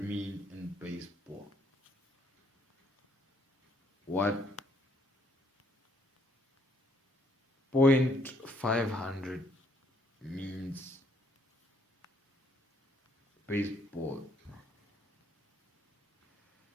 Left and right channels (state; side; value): normal; both; correlation 0.67